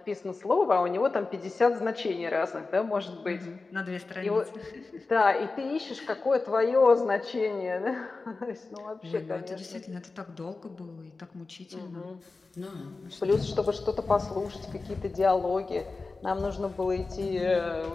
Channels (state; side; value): quieter; right; 3.8 dB